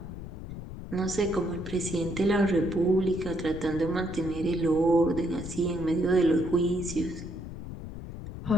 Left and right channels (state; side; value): noise; left; rumble, 10 dB below the sound